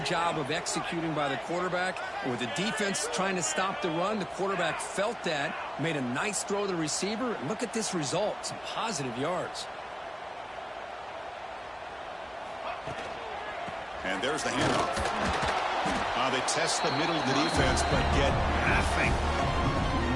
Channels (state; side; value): identical; both; correlation 1.00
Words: job of executing by the quarterback. And with the defense trying to stop the run, the quarterback felt that, made a nice throw to the receiver. And look at this result, some positive yards. And there's the handoff. They test the middle of the defense, but get nothing.